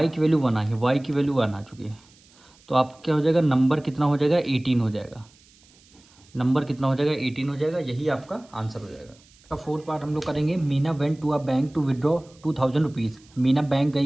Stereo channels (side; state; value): right; noise; hiss, 29 dB below the sound